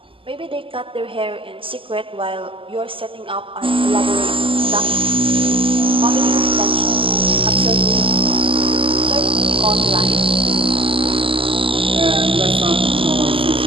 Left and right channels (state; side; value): late; left; 0.25 ms